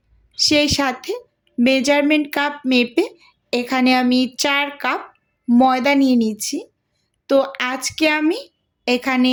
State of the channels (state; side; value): identical; both; correlation 1.00